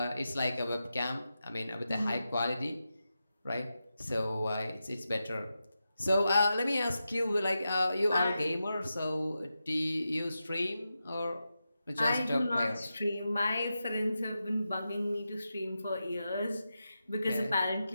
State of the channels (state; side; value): inverted; both; correlation -0.90